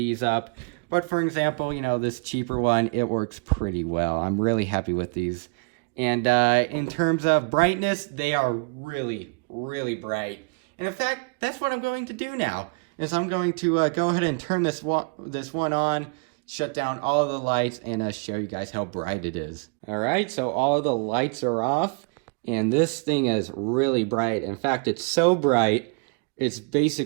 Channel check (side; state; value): left; quieter; 34.4 dB